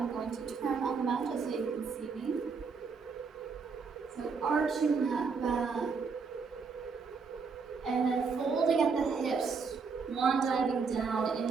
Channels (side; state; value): left; quieter; 5.1 dB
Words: going to turn on the mat just so you can see me. So arching that back, and then folding at the hips, one diving down